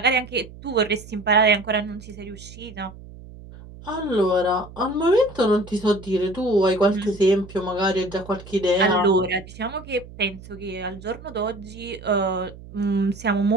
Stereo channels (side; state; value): right; noise; hum, 17 dB below the sound